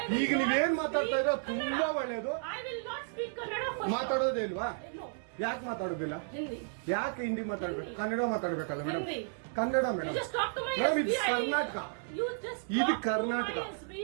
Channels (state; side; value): silent; left; digital silence